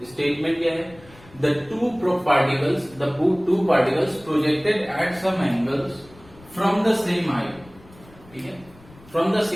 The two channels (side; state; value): left; noise; rumble, 24 dB below the sound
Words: स्टेटमेंट क्या है? The two particles projected at some angles from the same height, ठीक है, from the